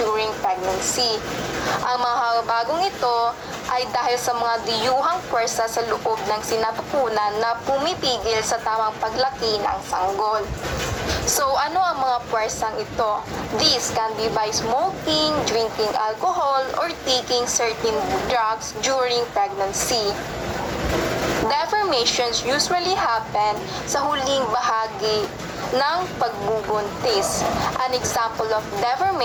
pregnancy. Ang mga bagong ito ay dahil sa mga diyuhang puwersa sa loob ng sinapupunan na pumipigil sa tamang paglaki ng sanggol. So, ano ang mga puwersang ito? This can be by smoking, drinking alcohol, or taking certain drugs during pregnancy. Deformations usually happen sa huling bahagi ng pagbubuntis. An example of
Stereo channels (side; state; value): both; identical; correlation 1.00